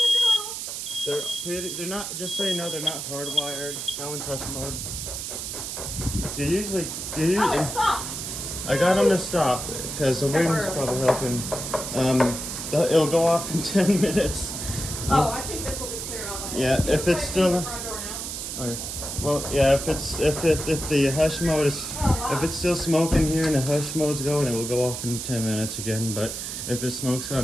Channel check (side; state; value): right; noise; hiss, 6 dB below the sound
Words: good girl. They're not, just so you know, they're not hardwired. That one's hush mode. They usually, Oh, it stopped. I got them to stop because the wind's probably helping. It'll go off in 10 minutes. Oh, I think this will be clear out. Yeah, if it's still. The front door now. Okay. Well, yeah, if the hush mode is, if it's still smoking here and the hush mode's going, it will go off in 10 minutes again. But if it smokes